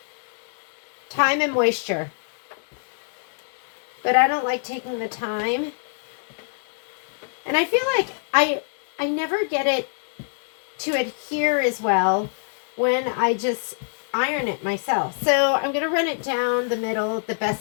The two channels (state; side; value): silent; right; digital silence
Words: time and moisture. But I don't like taking the time. And I feel like I never get it to adhere as well when I just iron it myself. So I'm going to run it down the middle the